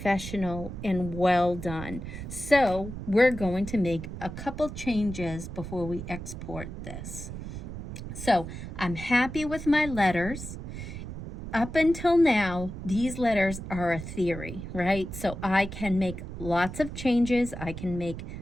and well done. So we're going to make a couple changes before we export this. So I'm happy with my letters. Up until now, these letters are a theory, right? So I can make lots of changes. I can make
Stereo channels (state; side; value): noise; right; rumble, 9 dB below the sound